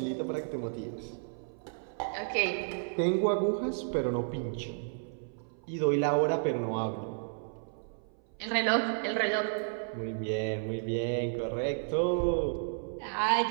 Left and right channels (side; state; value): left; silent; 56 dB below the other